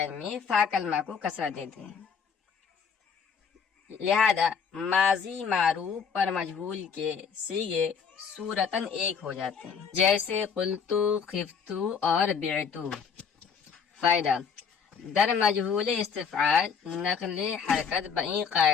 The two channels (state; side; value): quieter; right; 6.4 dB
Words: میں فا کلمہ کو کسرہ دیتے ہیں۔ لہذا ماضی معروف پر مجہول کے صیغے صورتاً ایک ہو جاتے ہیں، جیسے قلتو، خفتو اور بعتو۔ فائدہ: در مجہول استفعال نقل حرکت بئی